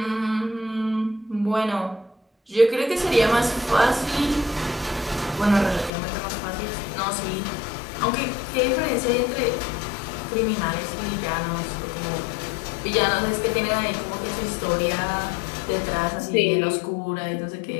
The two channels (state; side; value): drops out; right; at 5.9 s